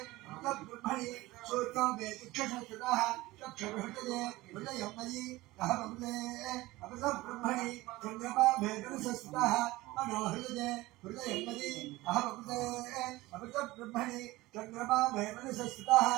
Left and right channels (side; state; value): left; quieter; 19.1 dB